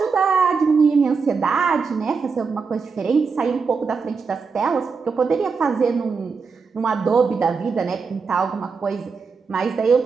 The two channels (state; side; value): quieter; left; 5.1 dB